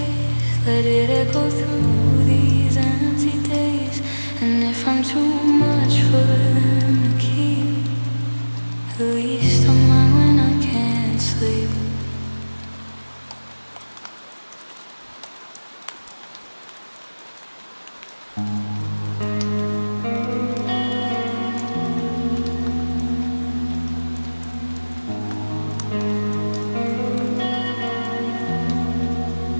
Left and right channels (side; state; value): both; inverted; correlation -1.00